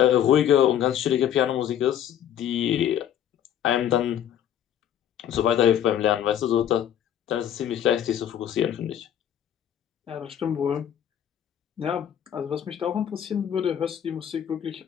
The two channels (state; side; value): quieter; right; 10.1 dB